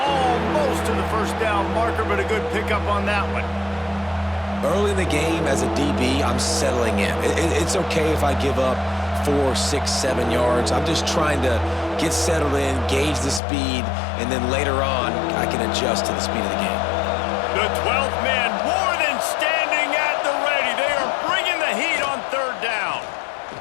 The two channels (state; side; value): drops out; right; at 13.4 s